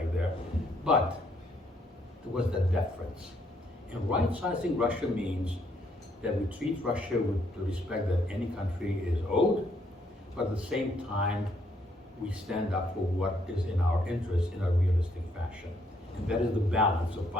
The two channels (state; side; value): normal; both; correlation 0.70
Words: there, but there was that deference. And right-sizing Russia means that we treat Russia with the respect that any country is owed, but at the same time, we stand up for what is in our interest in a realistic fashion. And that is the balance of